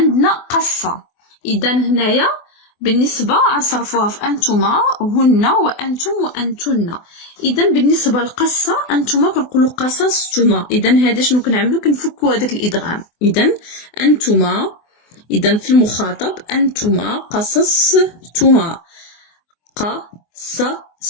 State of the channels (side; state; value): right; late; 24 ms